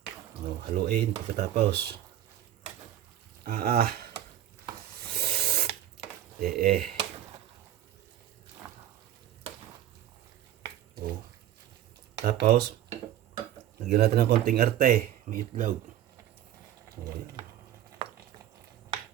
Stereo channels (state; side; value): quieter; left; 11.9 dB